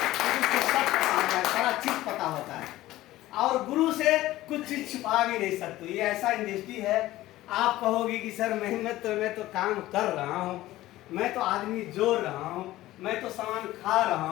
सारा चीज पता होता है और गुरु से कुछ चीज छुपा भी नहीं सकते। ये ऐसा इंडस्ट्री है, आप कहोगे कि सर मैं तो काम कर रहा हूँ, मैं तो आदमी जोड़ रहा हूँ, मैं तो सामान खा रहा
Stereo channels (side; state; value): right; quieter; 16.2 dB